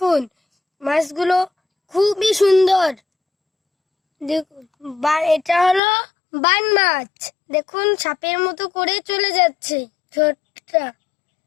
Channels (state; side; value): drops out; right; at 5.8 s